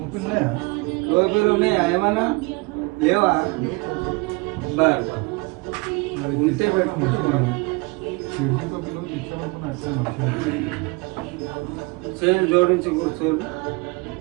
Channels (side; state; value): left; quieter; 26.9 dB